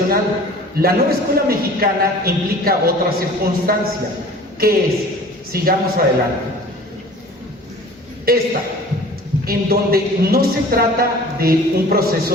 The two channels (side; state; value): both; normal; correlation 0.45